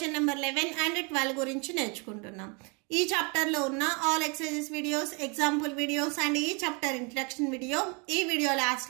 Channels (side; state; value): left; quieter; 32.4 dB